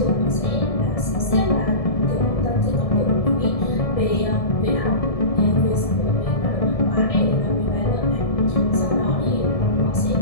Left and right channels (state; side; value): late; right; 1.7 ms